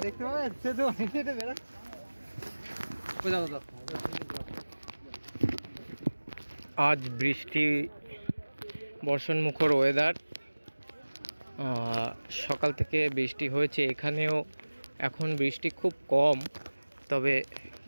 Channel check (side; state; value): both; inverted; correlation -1.00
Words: দেখতে পাবে। সে তো আজ বৃষ্টি বর্ষণমুখর ওয়েদার, সকাল থেকে বৃষ্টি হয়েছে, এখানেও এখন বৃষ্টি খুব কম, তবে